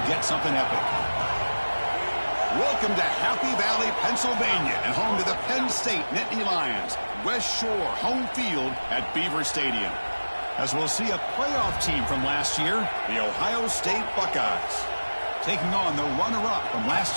get something epic. Welcome to Happy Valley, Pennsylvania, and home to the Penn State Nittany Lions. West Shore home field at Beaver Stadium. As we'll see a playoff team from last year, the Ohio State Buckeyes, taking on the runner-up from last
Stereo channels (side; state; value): both; inverted; correlation -1.00